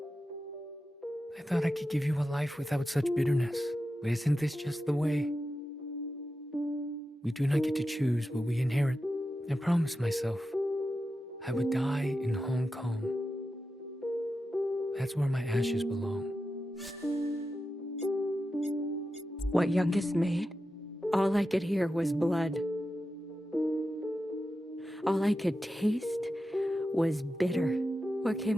I thought I could give you a life without such bitterness. But isn't this just the way? We do not get to choose what we inherit. I promised myself I would die in Hong Kong. That's where my ashes belong. What Youngest made, all I could hear was blood. All I could taste was bitter. What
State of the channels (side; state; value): both; normal; correlation 0.91